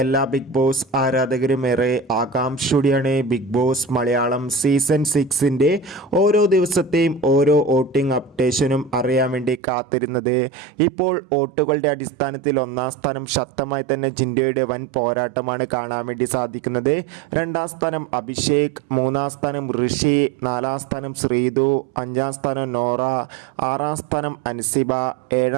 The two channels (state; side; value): drops out; left; at 9.6 s